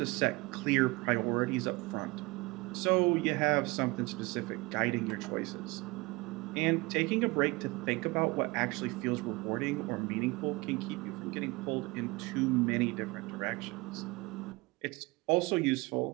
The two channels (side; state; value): left; quieter; 24.0 dB